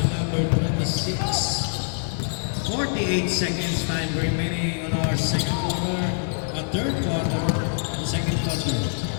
number 26. 48 seconds time remaining on our second quarter, third quarter, the second quarter.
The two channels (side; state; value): right; silent; digital silence